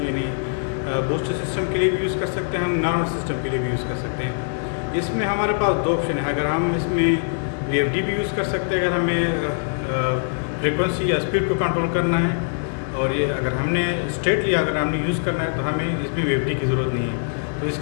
यानी बूस्टर सिस्टम के लिए भी यूज़ कर सकते हैं, हम नॉर्मल सिस्टम के लिए भी यूज़ कर सकते हैं। इसमें हमारे पास दो ऑप्शन है। अगर हम इसमें VFD भी यूज़ कर सकते हैं अगर हमें फ्रीक्वेंसी या स्पीड को कंट्रोल करना है, और ये अगर हमने स्ट्रेटली अगर हमने यूज़ करना है तो हमें इसमें VFD की ज़रूरत नहीं है। तो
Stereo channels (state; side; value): silent; right; 64 dB below the other